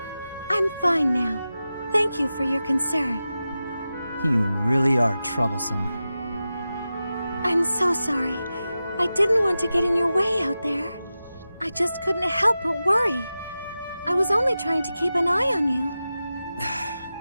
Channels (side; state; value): both; inverted; correlation -0.93